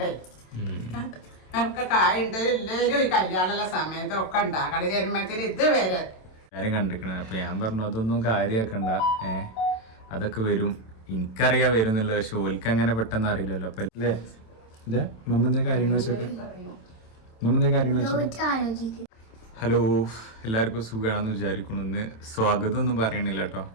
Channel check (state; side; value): late; right; 27 ms